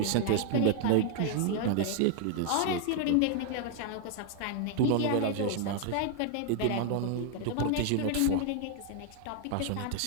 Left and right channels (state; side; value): different; both; correlation 0.00